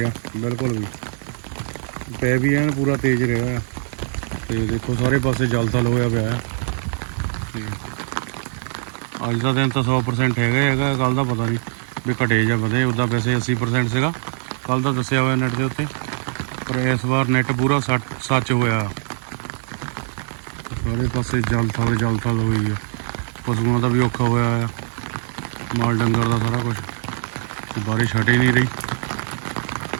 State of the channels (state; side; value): silent; left; digital silence